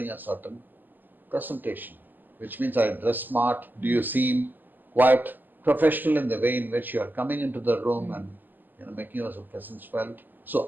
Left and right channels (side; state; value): left; late; 0.088 ms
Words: a certain presentation? Which means, I dress smart. Do you seem quite professional in the way in which you are coming into the room and making your presence felt?